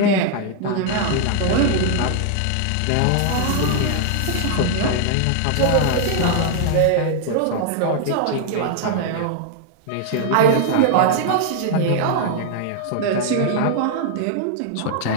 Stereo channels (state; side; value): different; both; correlation -0.01